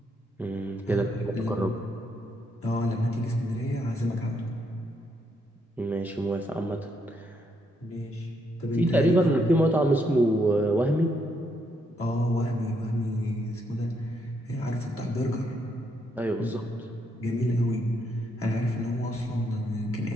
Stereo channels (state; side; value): normal; both; correlation 0.76